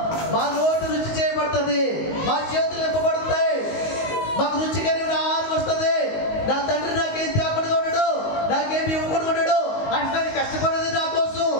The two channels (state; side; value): late; right; 19 ms